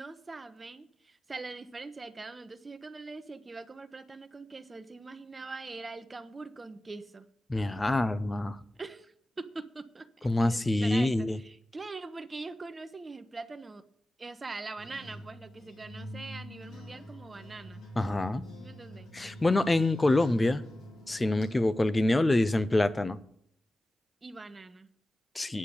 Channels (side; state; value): both; normal; correlation 0.95